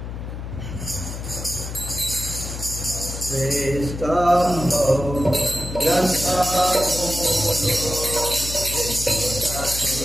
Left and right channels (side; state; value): left; noise; hum, 7 dB below the sound